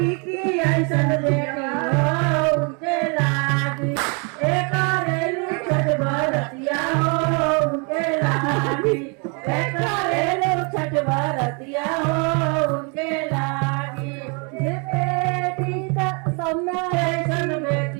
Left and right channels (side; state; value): left; quieter; 34.7 dB